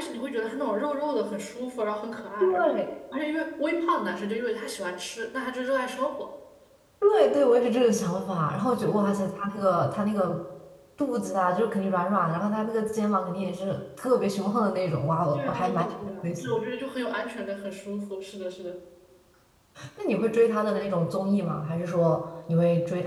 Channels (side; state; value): both; identical; correlation 1.00